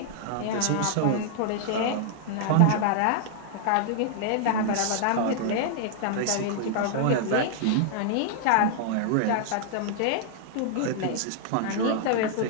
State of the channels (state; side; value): different; both; correlation -0.01